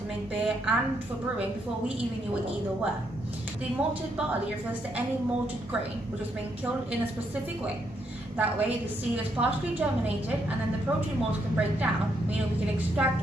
make beer and for brewing before we even knew what either were. The malted barley refers to any malted grain which has been killed in a specific way. That way, the seed is partially germinated and then the protein mold can break down, meaning we can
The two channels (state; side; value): normal; both; correlation 0.76